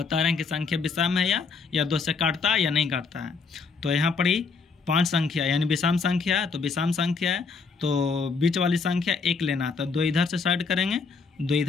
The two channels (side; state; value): right; quieter; 4.9 dB